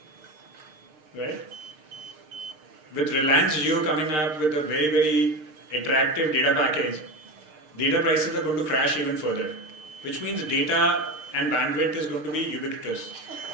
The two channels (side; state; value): left; late; 6.6 ms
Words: Right? With Reliance Jio coming up with a very, very attractive data package, data prices are going to crash even further, which means data and bandwidth is going to be ubiquitous.